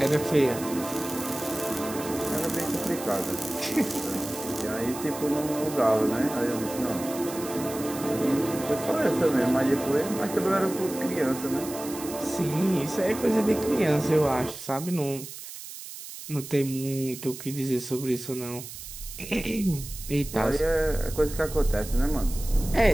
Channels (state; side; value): noise; right; hiss, 12 dB below the sound